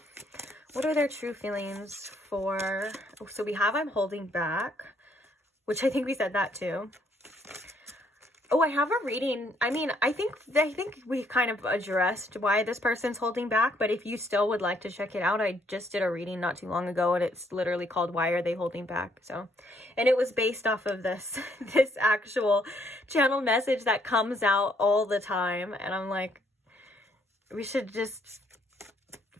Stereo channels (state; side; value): normal; both; correlation 0.69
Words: What are their true feelings for... Oh, so we have I'm holding back, which I think we said that too. Oh, I have a reading. I mean, I think we kind of addressed why this person's holding back, but if you still would like to check it out, I just did a reading not too long ago, and it's literally called Why Are They Holding Back? So, and it was based off of this actual channel message that comes out all the time, and I'm like, we should just